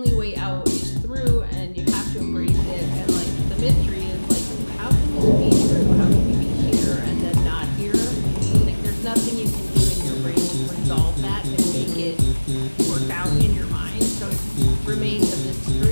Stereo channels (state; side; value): inverted; both; correlation -1.00